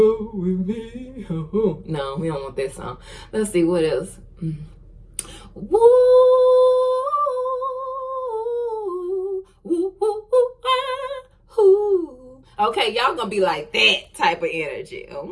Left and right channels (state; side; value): identical; both; correlation 1.00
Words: with me. No, we don't want that song. Let's see what else. Woo, woo, woo, woo. Okay, y'all gonna be like that type of energy.